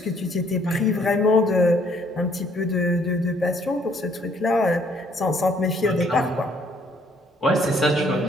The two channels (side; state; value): both; normal; correlation 0.64